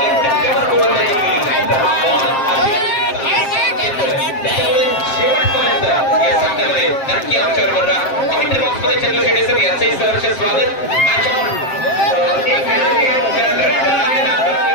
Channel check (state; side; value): late; right; 7.6 ms